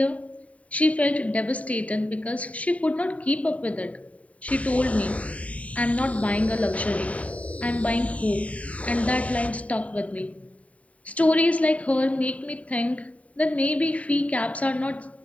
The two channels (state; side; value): late; right; 0.067 ms